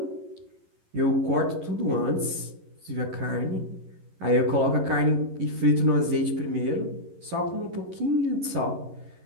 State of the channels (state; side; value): late; left; 11 ms